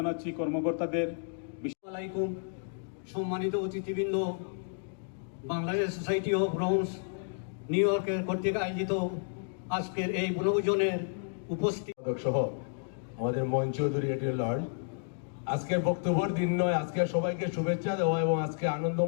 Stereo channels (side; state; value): right; silent; digital silence